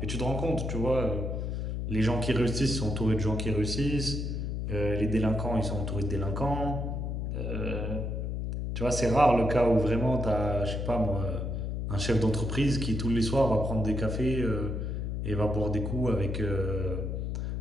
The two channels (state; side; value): noise; left; hum, 2 dB below the sound